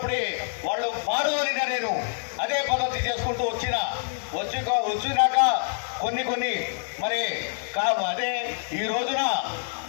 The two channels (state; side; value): silent; right; digital silence